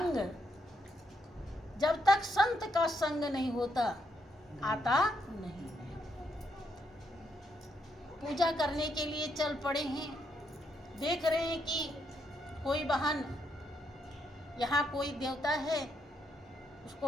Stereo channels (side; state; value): both; normal; correlation 0.78